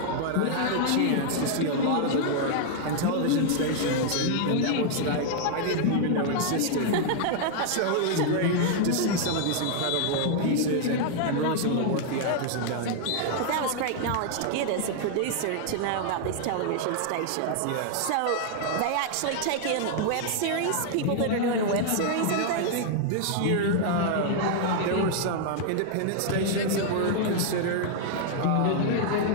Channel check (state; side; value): different; both; correlation 0.00